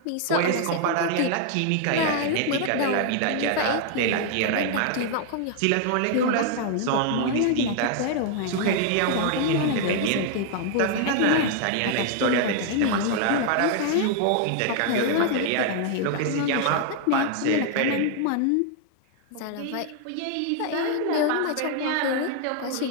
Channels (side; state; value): both; different; correlation 0.00